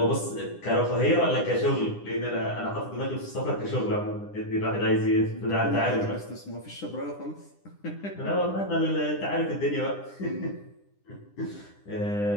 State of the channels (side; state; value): right; late; 9.9 ms